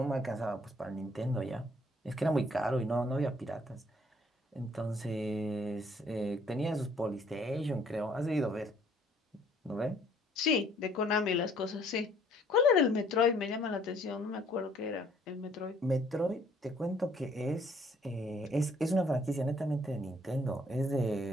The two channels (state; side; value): normal; both; correlation 0.61